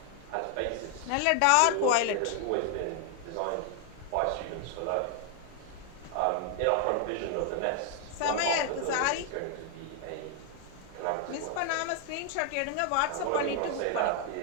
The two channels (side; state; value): both; different; correlation 0.00